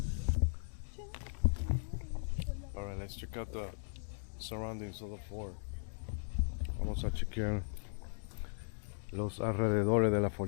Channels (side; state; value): right; silent; digital silence